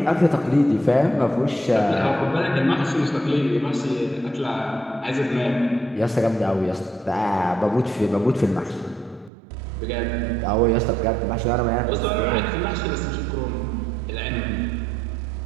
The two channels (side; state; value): left; drops out; at 9.3 s